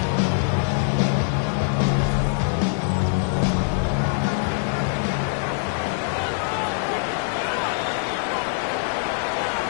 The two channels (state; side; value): silent; right; digital silence